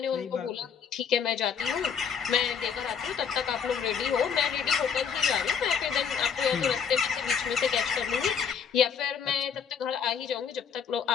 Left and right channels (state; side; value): quieter; right; 7.0 dB